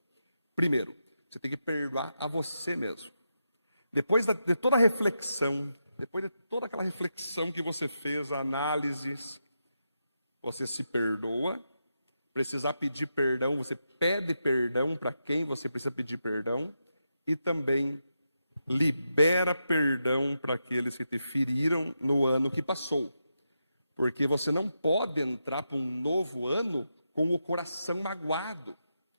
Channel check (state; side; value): inverted; both; correlation -0.86